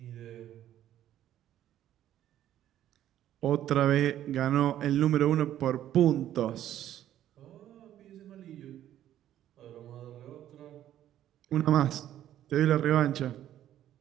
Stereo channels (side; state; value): left; quieter; 11.9 dB